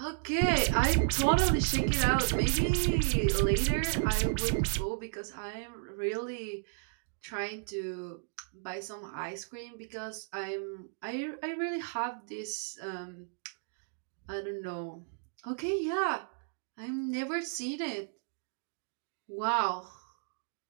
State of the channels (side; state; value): left; silent; digital silence